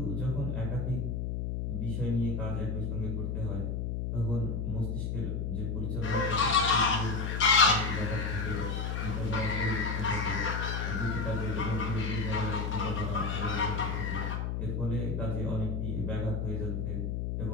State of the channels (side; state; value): left; noise; hum, 1 dB below the sound